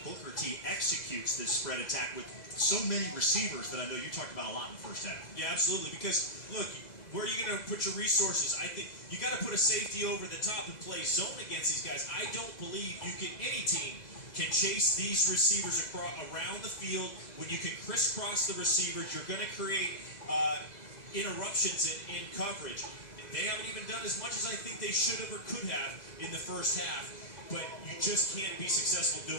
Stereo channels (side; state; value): right; late; 2.0 ms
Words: Booker T executes this spread attack with so many receivers that I know you talked about a lot in the first half. Yeah, absolutely. Because, look, where are you going to put your resources? I think you got to put a safety over the top and play zone against these guys. I don't believe any team can chase these receivers around the field. When you can crisscross the receivers, you're going to create interruptions in coverage. They haven't even done as much as I think they should have or could have in the first half. But you just can't be successful